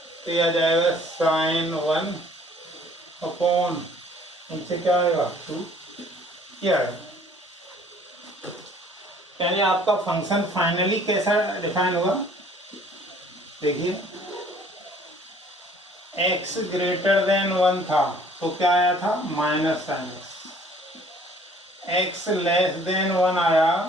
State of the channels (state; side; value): normal; both; correlation 0.56